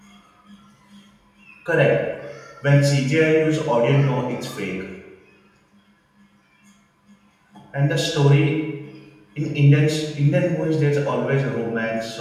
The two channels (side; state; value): both; identical; correlation 1.00